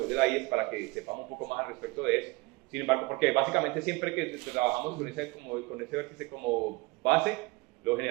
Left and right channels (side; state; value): left; quieter; 23.5 dB